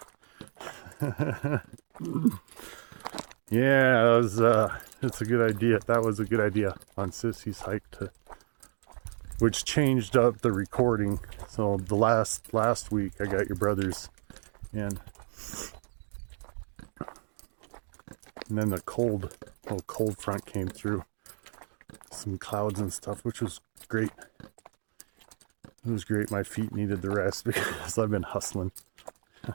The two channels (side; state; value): left; silent; 57 dB below the other